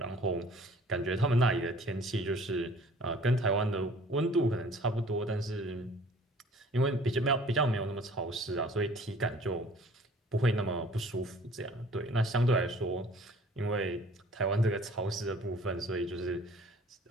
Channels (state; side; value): normal; both; correlation 0.52